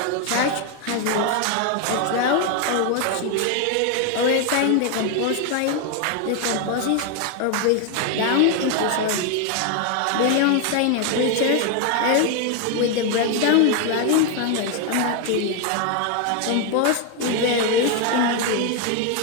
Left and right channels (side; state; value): both; different; correlation 0.01